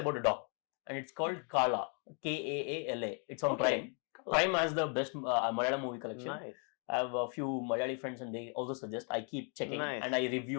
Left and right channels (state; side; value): quieter; right; 39.8 dB